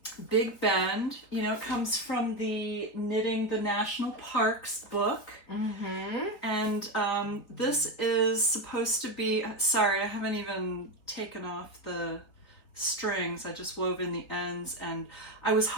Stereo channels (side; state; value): right; late; 3.8 ms